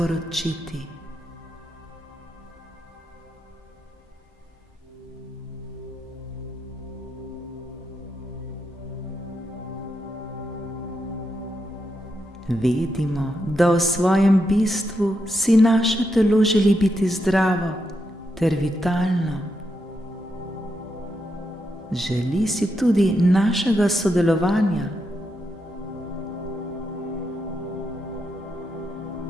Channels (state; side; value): normal; both; correlation 0.83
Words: Vedimo, da v svojem bistvu si naše telo želi biti zdravo ter vitalno. Želi si tudi našega sodelovanja.